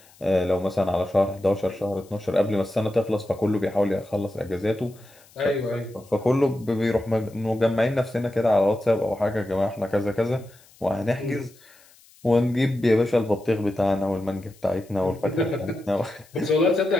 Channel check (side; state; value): left; noise; hiss, 27 dB below the sound